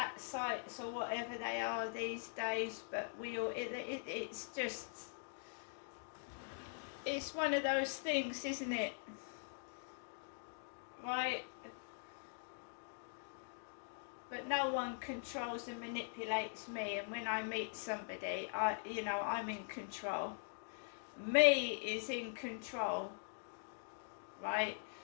sites or whatever they are these days, but it's one of those things, isn't it? Right? But no one controls and manipulates me, and when I meet somebody, I'm in control. Me is in control, right?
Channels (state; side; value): silent; right; digital silence